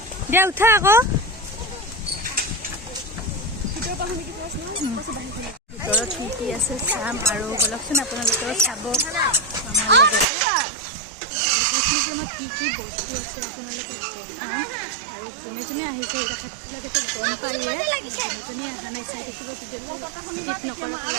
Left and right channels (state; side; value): drops out; left; at 10.2 s